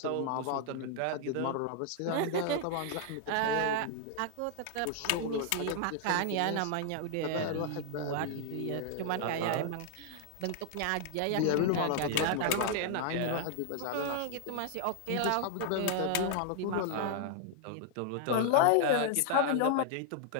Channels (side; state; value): both; different; correlation 0.00